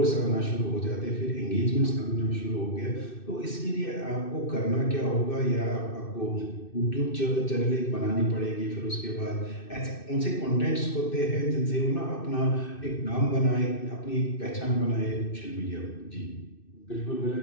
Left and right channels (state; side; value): late; right; 2.6 ms